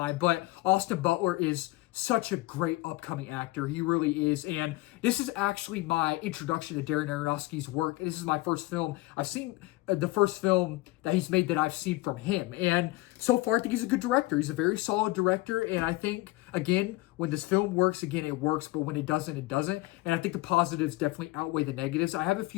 but Austin Butler is such a great upcoming actor. He really is, and this is actually my introduction to Darren Aronofsky's work. This is my first film I've seen, the first film that he's made that I've seen from him, and so far I think he's a good director. He's a very solid director, and I think, again, when this film works, again, it works, but when it doesn't, it doesn't, and I think the positives definitely outweigh the negatives. I have a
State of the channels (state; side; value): quieter; right; 20.2 dB